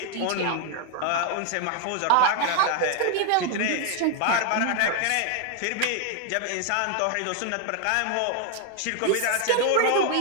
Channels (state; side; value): different; both; correlation 0.01